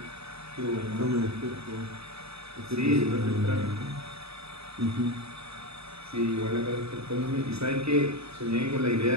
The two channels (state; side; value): late; left; 0.78 ms